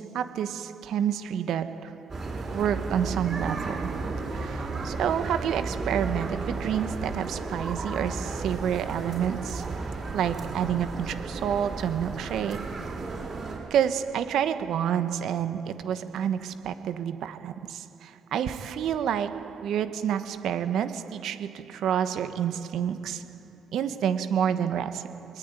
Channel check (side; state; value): left; quieter; 7.6 dB